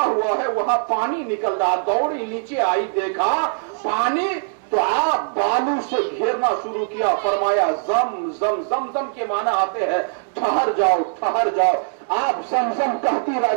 ہوا ہے وہاں پانی نکل رہا، دوڑی نیچے آئی، دیکھا پانی، تو آپ بالو سے گھیرنا شروع کیا، فرمایا زم زم، زم زم کے معنی آتے ہیں ٹھہر جاؤ ٹھہر جاؤ، آپ زمزم کہتی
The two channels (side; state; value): left; silent; digital silence